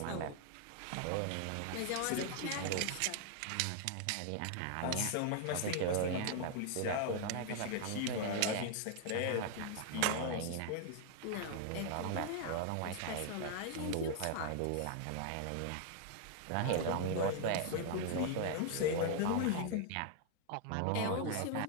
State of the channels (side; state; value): both; different; correlation 0.00